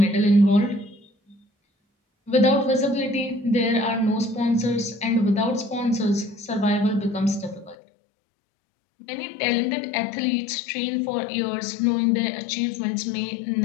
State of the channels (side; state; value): right; drops out; at 7.8 s